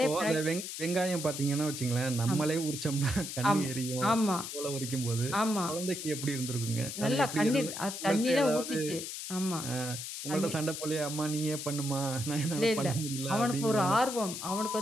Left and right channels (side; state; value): left; noise; hiss, 7 dB below the sound